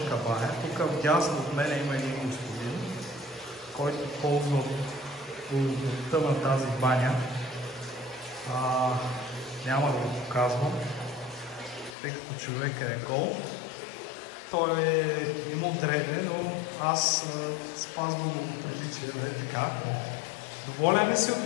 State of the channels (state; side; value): drops out; right; at 12.0 s